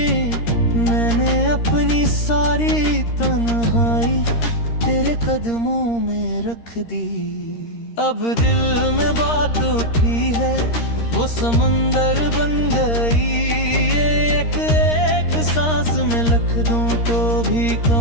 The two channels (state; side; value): late; right; 13 ms